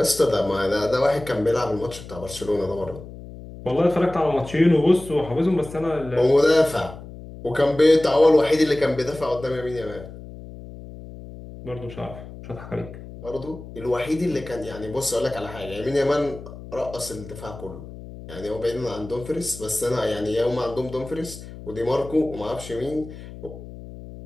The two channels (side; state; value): left; noise; hum, 14 dB below the sound